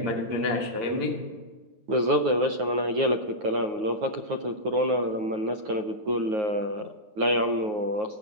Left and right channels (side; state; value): left; late; 9.4 ms